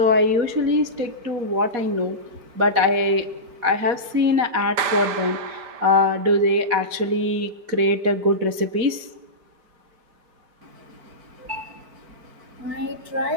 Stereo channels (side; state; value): left; late; 4.2 ms